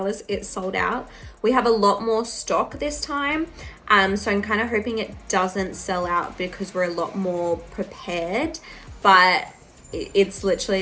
It sold out. We have a lot more stock this time. So I'm kind of hoping it doesn't sell out because we're a lot more prepared, but it's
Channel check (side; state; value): both; identical; correlation 1.00